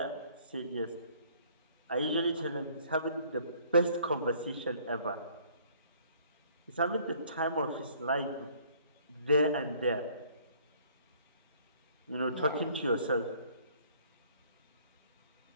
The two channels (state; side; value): inverted; both; correlation -0.58